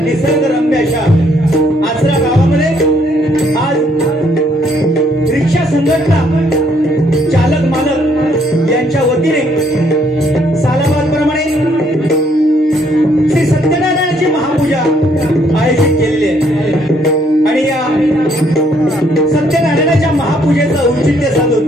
निसर्गरम्य अशा आचरा गावामध्ये आज रिक्षा संघटना चालक मालक यांच्या वतीने सालाबादप्रमाणे श्री सत्यनारायणाची महापूजा आयोजित केलेली आहे आणि या सत्यनारायणाच्या महापूजेचं औचित्य साधून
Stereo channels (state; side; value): normal; both; correlation 0.68